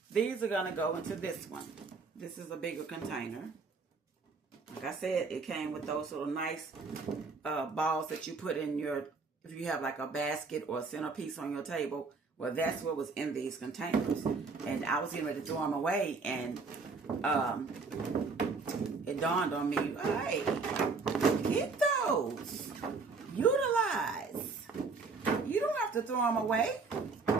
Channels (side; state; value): left; quieter; 4.4 dB